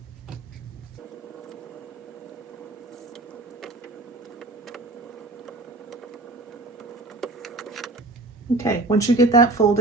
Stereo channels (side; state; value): left; quieter; 3.0 dB